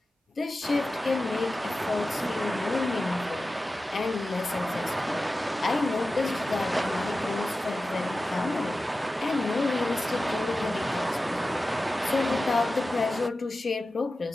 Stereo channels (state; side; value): normal; both; correlation 0.94